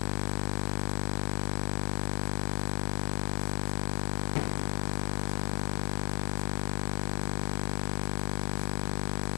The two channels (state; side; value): silent; right; digital silence